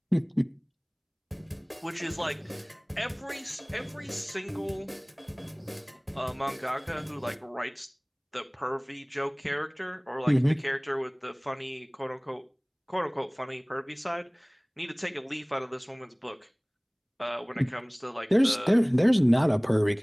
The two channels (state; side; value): identical; both; correlation 1.00